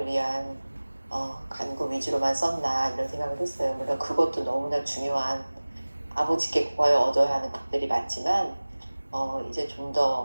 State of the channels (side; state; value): both; inverted; correlation -1.00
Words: 위한 간구 위주로만 썼나 이런 생각을 했어요. 물론 그것도 너무나 중요한 아버지께 구하여 얻어야 하는 것들이 맞지만 이제 좀